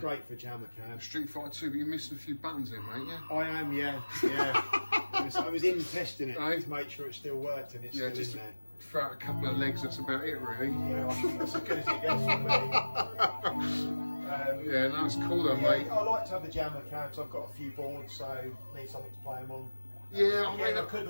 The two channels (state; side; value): inverted; both; correlation -1.00